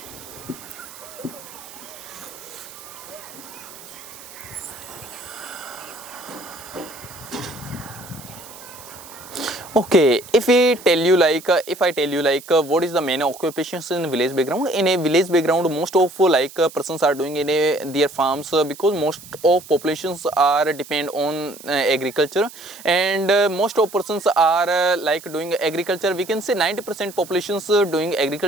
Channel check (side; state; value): right; noise; hiss, 17 dB below the sound